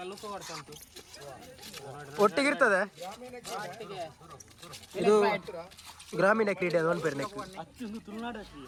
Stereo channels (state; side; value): identical; both; correlation 1.00